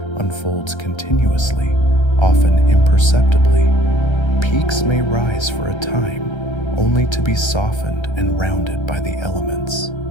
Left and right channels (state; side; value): late; right; 1.3 ms